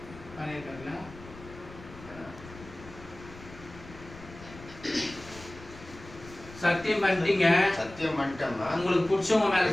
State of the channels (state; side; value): noise; left; rumble, 17 dB below the sound